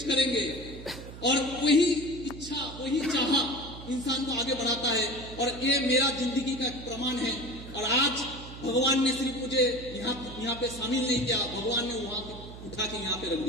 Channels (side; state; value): right; noise; hum, 13 dB below the sound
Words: करेंगे, और वही इच्छा वही चाहा इंसान को आगे बढ़ाता है। और ये मेरा जिंदगी का प्रमाण है। और आज भगवान ने सिर्फ मुझे यहाँ पे शामिल नहीं किया, भगवान ने वहां उठा के यहाँ पे रख